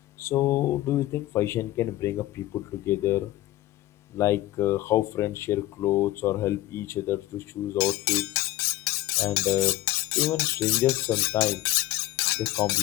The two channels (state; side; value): quieter; right; 16.3 dB